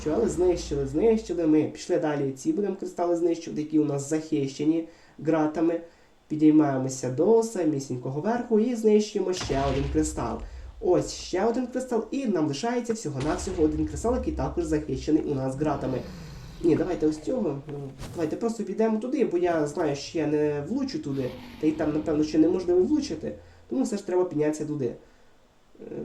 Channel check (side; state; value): both; identical; correlation 1.00